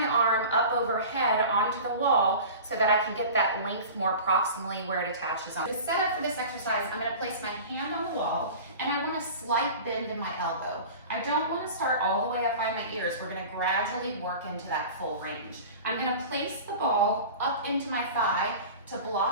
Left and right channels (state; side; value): inverted; both; correlation -0.36